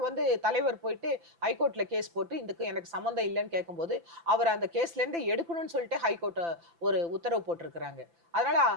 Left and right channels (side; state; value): left; late; 5.9 ms